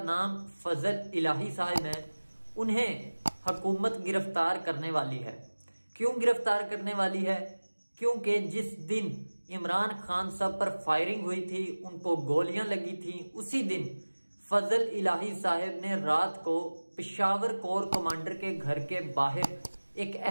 नाम फजल इलाही साहब है। उन्हें हुकूमत गिरफ्तार करने वाली है। क्यों गिरफ्तार करने वाली है? क्योंकि जिस दिन इमरान खान साहब पर फायरिंग हुई थी, उनको गोलियां लगी थी, उसी दिन फजल इलाही साहब ने रात को पेशावर कोर कमांडर के घर के बाहर एक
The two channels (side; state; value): both; inverted; correlation -1.00